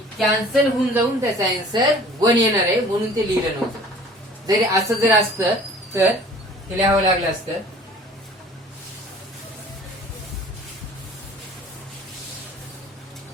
कॅन्सल होऊन जाऊन त्याचा आन्सर 1 येणार आहे, म्हणून ते लिहिलं नव्हतं. जरी असं जर असतं तर ते लिहावं लागलं असतं.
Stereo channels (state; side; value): normal; both; correlation 0.49